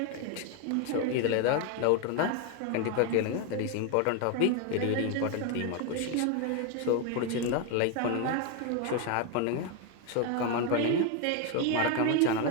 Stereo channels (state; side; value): different; both; correlation 0.01